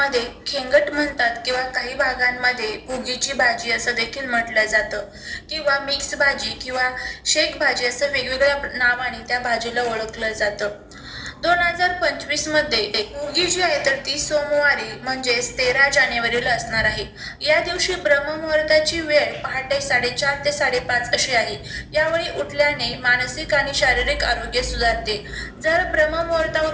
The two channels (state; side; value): identical; both; correlation 1.00